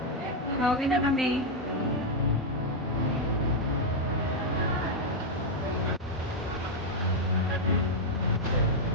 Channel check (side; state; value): both; normal; correlation -0.01